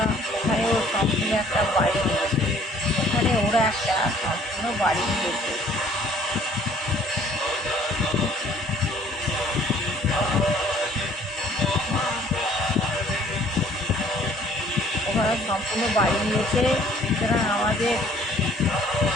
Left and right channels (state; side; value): normal; both; correlation 0.57